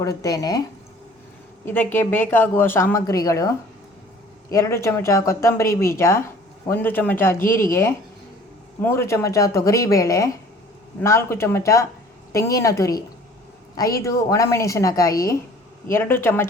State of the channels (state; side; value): normal; both; correlation 0.50